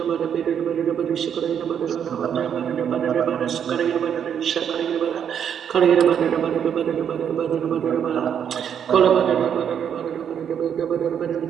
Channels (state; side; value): quieter; left; 8.4 dB